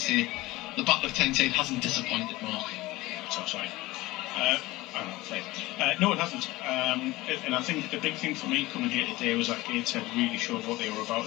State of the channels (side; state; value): right; quieter; 19.4 dB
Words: the Battle of Tyneside hasn't disappointed, Mark. So sorry. No, it hasn't. And I think the big thing for me coming here today was that Gateshead really showed what they were about